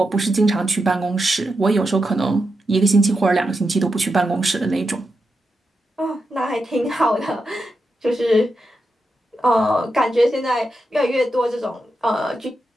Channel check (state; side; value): normal; both; correlation 0.87